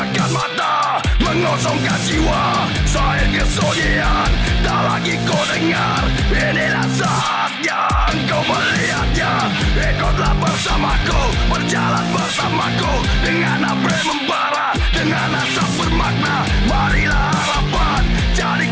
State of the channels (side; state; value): both; identical; correlation 1.00